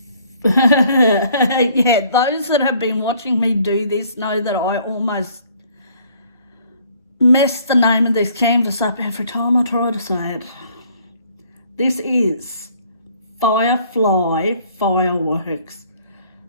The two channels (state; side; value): inverted; both; correlation -0.60